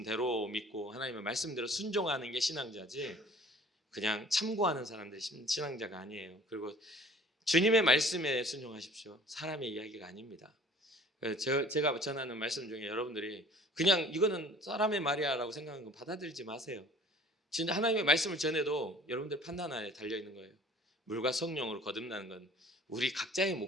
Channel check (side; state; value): both; normal; correlation 0.50